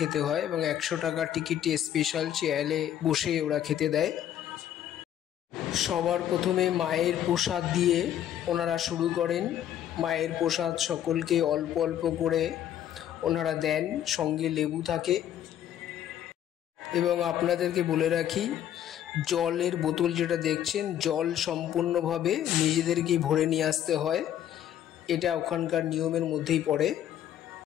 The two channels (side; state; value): right; quieter; 10.8 dB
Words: হয় এবং 100 টাকার টিকিটটি স্পেশাল চেয়ারে বসে ওরা খেতে দেয়। সবার প্রথমে মায়ের প্রসাদ দিয়ে ওনারা শুরু করেন। মায়ের প্রসাদ সকলকে অল্প অল্প করে ওনারা দেন, সঙ্গে লেবু থাকে। এবং আপনাদেরকে বলে রাখি, জলের বোতল যেটা দেখছেন, জল সম্পূর্ণভাবে নিজেদেরকেই ভরে নিয়ে আসতে হয়, এটা ওখানকার নিয়মের মধ্যেই পড়ে।